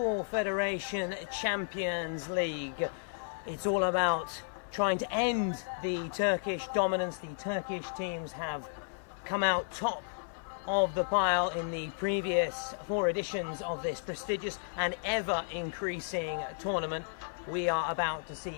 Federation Champions League. It's all about trying to end the Turkish dominance. The Turkish teams have come out top of the pile in the previous four editions of this prestigious and ever increasing tournament. We are about to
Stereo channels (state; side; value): silent; right; 55 dB below the other